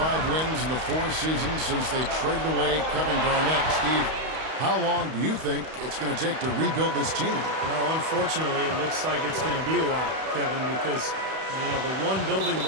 wins in the 4 seasons since they traded away Kevin Garnett. Steve, how long do you think it's going to take to rebuild this team? Well, unfortunately, it looks like it's going to be a while, Kevin, because, you know, the one building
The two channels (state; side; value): late; left; 31 ms